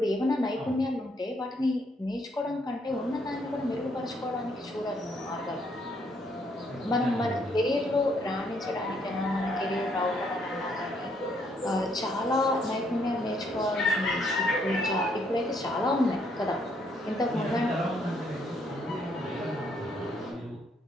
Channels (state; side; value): normal; both; correlation 0.70